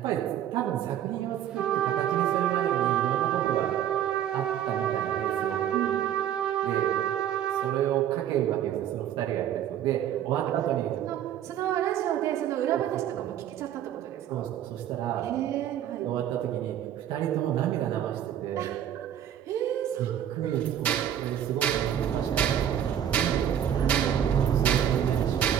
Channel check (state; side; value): quieter; left; 10.4 dB